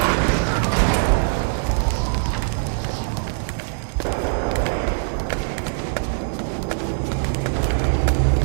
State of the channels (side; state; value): left; silent; digital silence